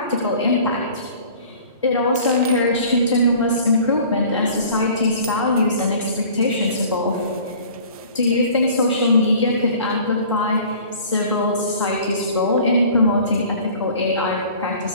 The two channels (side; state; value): both; inverted; correlation -0.47